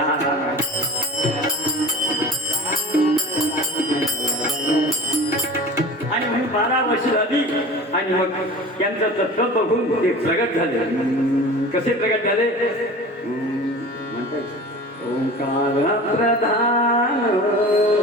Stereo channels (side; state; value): both; normal; correlation 0.38